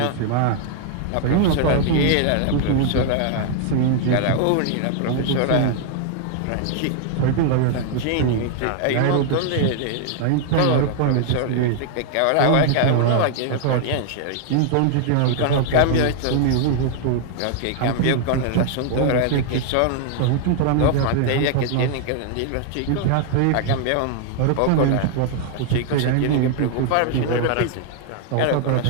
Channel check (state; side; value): different; both; correlation 0.00